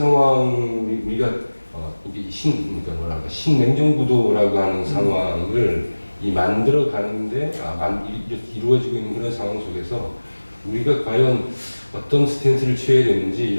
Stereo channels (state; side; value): inverted; both; correlation -1.00